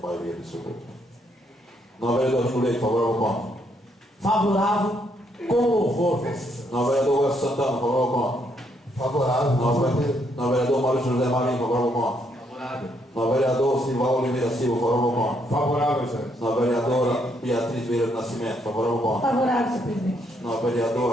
absoluta. Não, vereador Júlio Leite, favorável ou contra? Favorável com louvor, Vossa Excelência. Não, vereador Welson Santana, favorável ou contra? Favorável. Não, vereador Maurício José Marinho, favorável ou contra? caráter. No vereador Silva Oliveira Silva, favorável ao ponto. Favorável, excelência. Na vereadora Beatriz Vieira do Nascimento, favorável ao ponto. Favorável, senhor presidente. Na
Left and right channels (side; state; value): both; normal; correlation 0.73